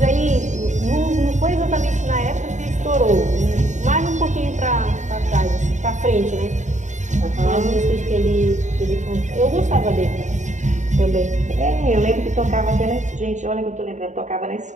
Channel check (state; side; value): late; left; 0.35 ms